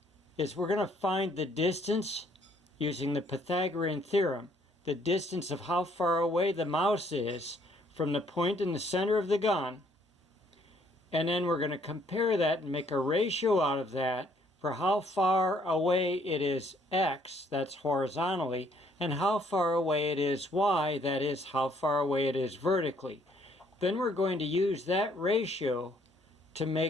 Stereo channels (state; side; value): normal; both; correlation 0.65